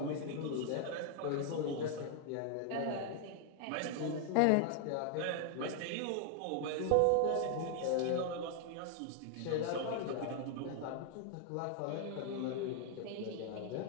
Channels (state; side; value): different; both; correlation 0.00